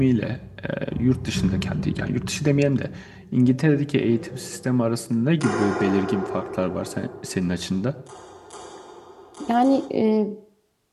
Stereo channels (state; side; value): identical; both; correlation 1.00